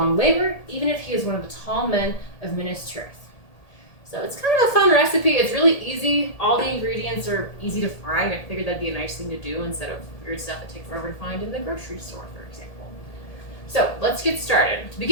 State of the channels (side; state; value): right; late; 1.8 ms